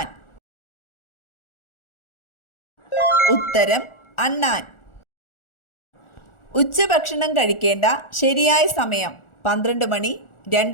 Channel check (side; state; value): right; late; 1.4 ms